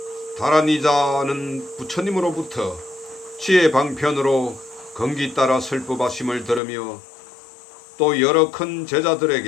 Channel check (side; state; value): right; drops out; at 6.6 s